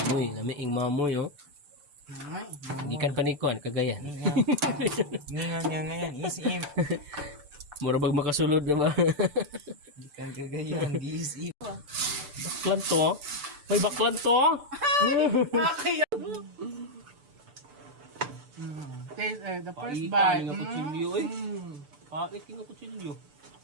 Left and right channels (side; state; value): left; late; 6.8 ms